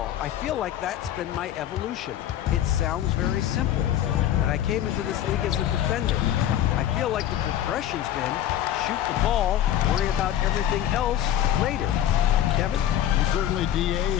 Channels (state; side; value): quieter; right; 11.3 dB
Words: I feel like that's been my evolution. It sounds very simple, but I came into this league as a defender. I feel like the progression's been shoot the ball, worry about everything else later. Kevin? Certainly, DA